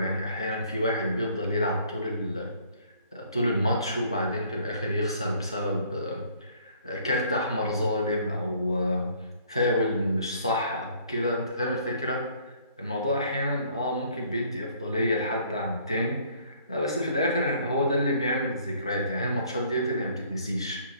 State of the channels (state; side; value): inverted; both; correlation -0.60